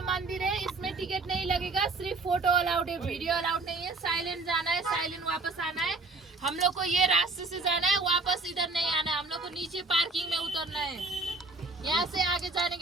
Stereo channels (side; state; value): left; quieter; 3.5 dB